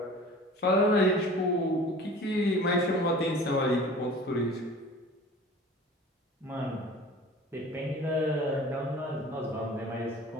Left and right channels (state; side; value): normal; both; correlation 0.43